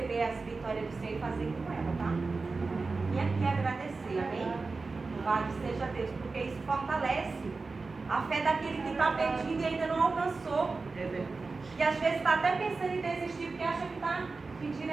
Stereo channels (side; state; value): left; quieter; 4.0 dB